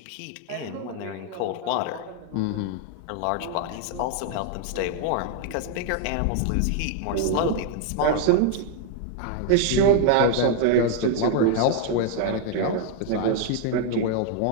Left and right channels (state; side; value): different; both; correlation 0.00